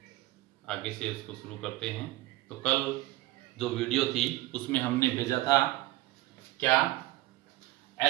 आगे से उसको शुरू करते हैं। तो कल जो वीडियो थी उसमें हमने भेजा था क्या,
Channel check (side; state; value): left; quieter; 17.5 dB